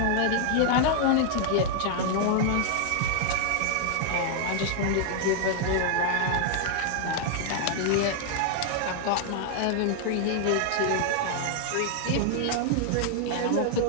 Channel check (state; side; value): different; both; correlation 0.00